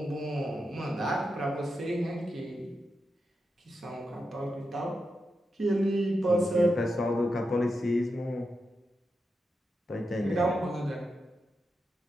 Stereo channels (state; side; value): normal; both; correlation 0.87